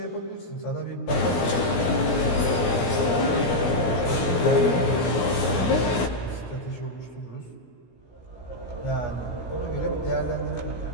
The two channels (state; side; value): late; right; 17 ms